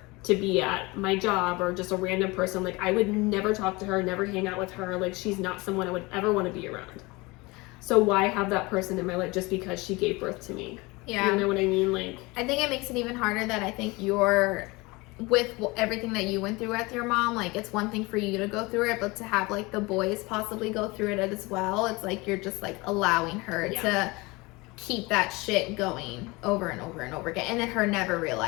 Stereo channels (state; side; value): quieter; right; 24.0 dB